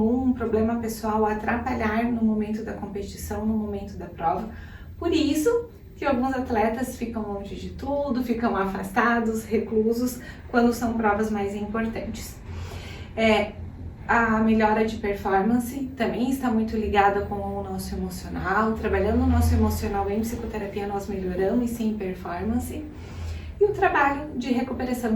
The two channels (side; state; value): both; identical; correlation 1.00